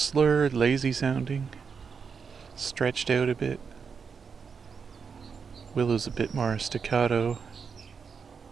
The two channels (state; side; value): quieter; left; 5.9 dB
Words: lazy sounding, stretched out a bit. Willow's a bit more staccato.